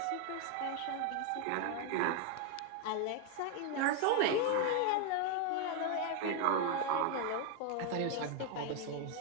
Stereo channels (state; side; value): different; both; correlation 0.01